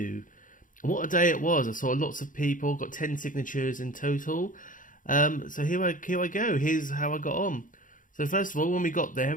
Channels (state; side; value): late; right; 0.38 ms